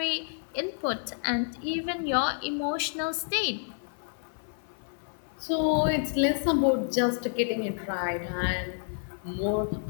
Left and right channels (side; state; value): right; silent; digital silence